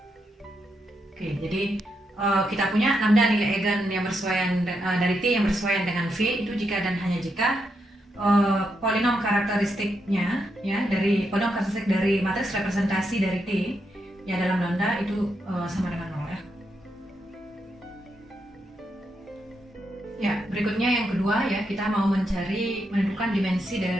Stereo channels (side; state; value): both; normal; correlation 0.82